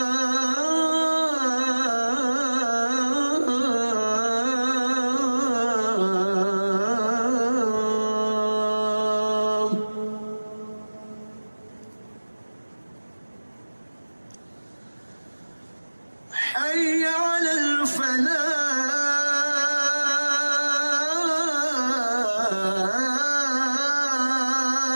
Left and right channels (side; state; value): both; inverted; correlation -1.00